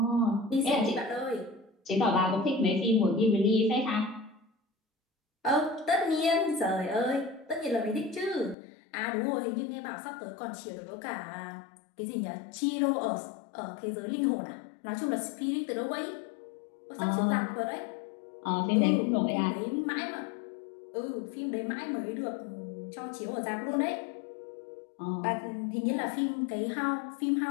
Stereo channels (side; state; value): right; drops out; at 8.6 s